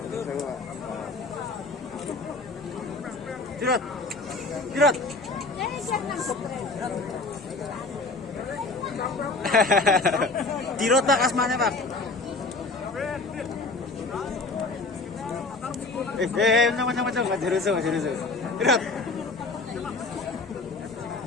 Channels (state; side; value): quieter; right; 3.5 dB